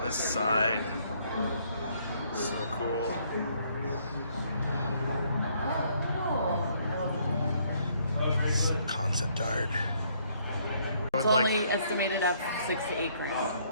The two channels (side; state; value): both; inverted; correlation -0.67